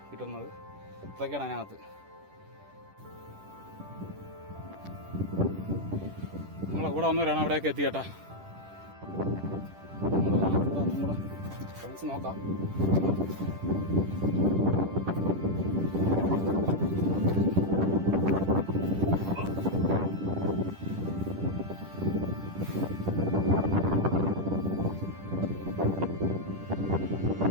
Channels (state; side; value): late; left; 10 ms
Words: കിട്ടുന്നത്. ഇതൊക്കെയാണ് അതിനകത്ത്. നമ്മളെ കൂടെ വന്നവരാണ് അവിടെയൊക്കെ എത്തിയേട്ടാ. നമ്മുടെ ഫ്രണ്ട്സ് നോക്കാം.